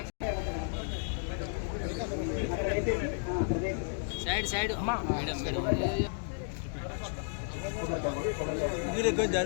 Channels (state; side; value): silent; right; digital silence